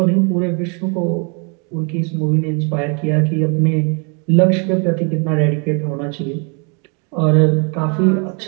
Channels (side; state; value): left; quieter; 35.7 dB